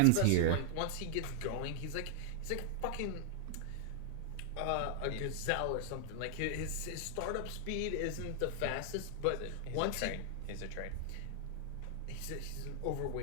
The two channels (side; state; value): both; different; correlation -0.01